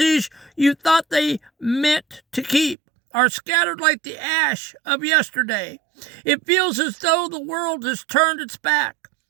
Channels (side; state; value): left; drops out; at 2.8 s